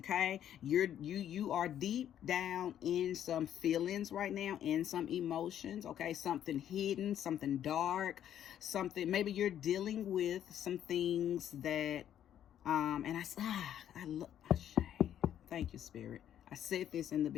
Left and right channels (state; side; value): quieter; right; 10.5 dB